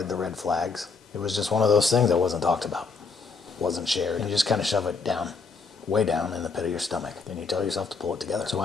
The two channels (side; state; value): right; quieter; 4.6 dB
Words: the red flags. It was just one of those things that wasn't talked about, wasn't shared. And you just kind of shove it down, way down in the pit of your stomach. Then you tell yourself to pull it together. So